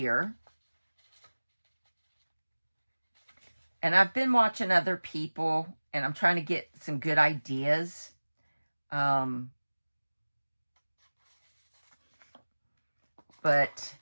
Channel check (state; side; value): inverted; both; correlation -1.00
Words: And I've been watching other people, and I'm trying to get some good ideas. But